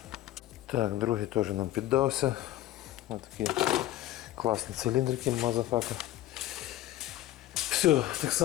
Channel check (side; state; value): right; quieter; 14.7 dB